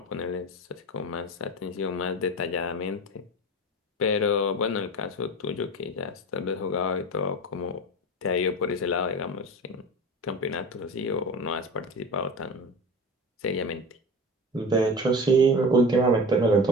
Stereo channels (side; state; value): both; normal; correlation 0.30